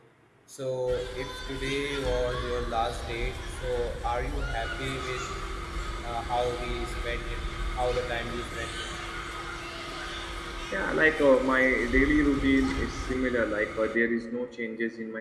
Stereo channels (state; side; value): identical; both; correlation 1.00